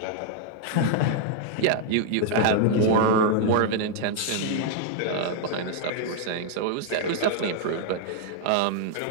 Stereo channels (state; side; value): different; both; correlation 0.00